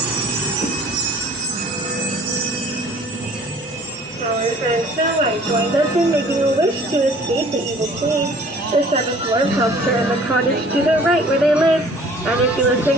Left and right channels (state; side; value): normal; both; correlation 0.51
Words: Our friend Snow White joined us in making a wish to escape the evil queen. The 7th dwarf helps her in the cottage to the right where they live, and if you listen